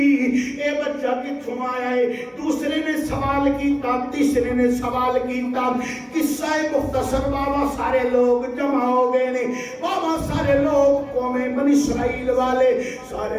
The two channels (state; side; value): identical; both; correlation 1.00